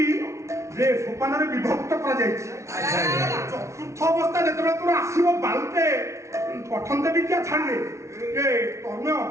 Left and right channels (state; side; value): late; left; 0.14 ms